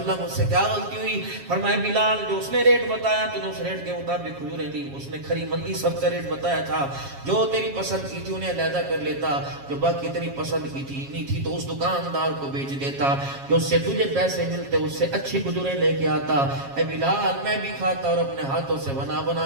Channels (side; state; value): left; late; 7.3 ms